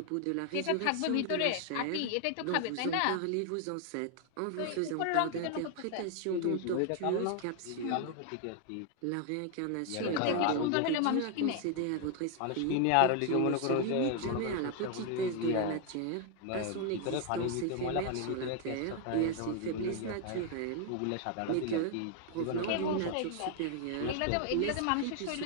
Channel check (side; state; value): both; different; correlation 0.00